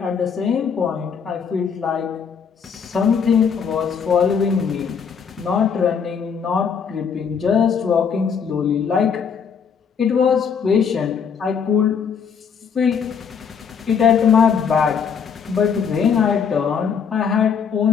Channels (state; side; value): quieter; right; 6.7 dB